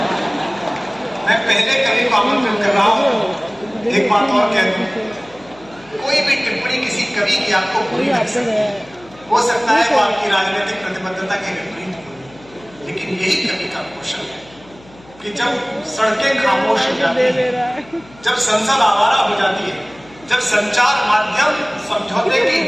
मैं पहले कवि को आमंत्रित कर रहा हूं, एक बात और कह दूं, कोई भी टिप्पणी किसी कवि की आपको बुरी लग सकती है, हो सकता है वो आपकी राजनीतिक प्रतिबद्धता के विपरीत हो, लेकिन यही कवि का कौशल है कि जब सड़कें खामोश हो जाती हैं, जब संसद आवारा हो जाती है, जब संचार माध्यम समझौते की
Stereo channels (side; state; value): left; noise; hum, 24 dB below the sound